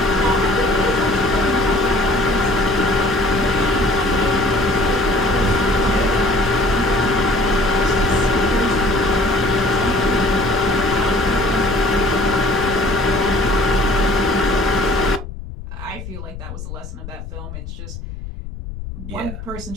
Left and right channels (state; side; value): noise; left; rumble, 11 dB below the sound